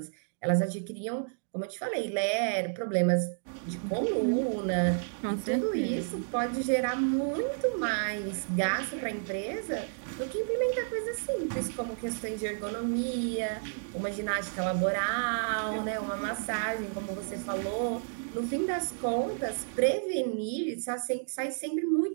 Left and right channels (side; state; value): left; silent; digital silence